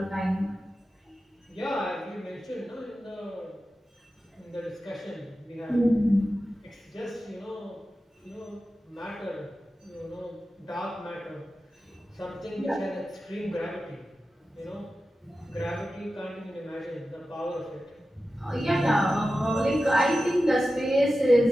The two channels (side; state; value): both; normal; correlation 0.93